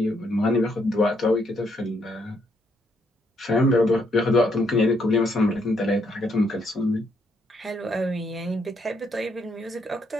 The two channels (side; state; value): both; normal; correlation 0.73